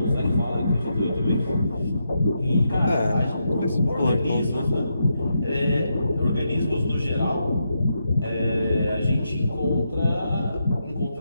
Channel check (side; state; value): both; inverted; correlation -0.83